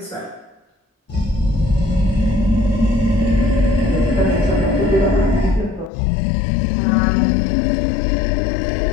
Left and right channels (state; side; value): drops out; right; at 5.9 s